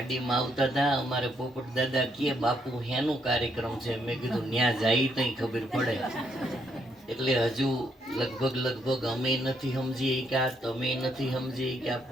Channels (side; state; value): both; normal; correlation 0.74